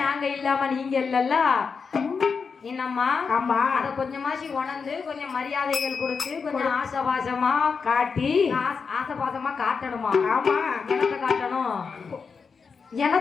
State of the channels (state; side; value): quieter; right; 5.4 dB